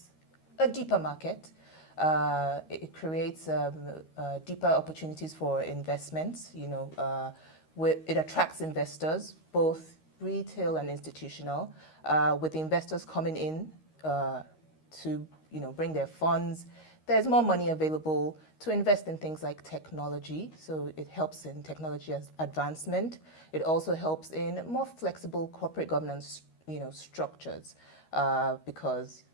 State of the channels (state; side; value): late; right; 13 ms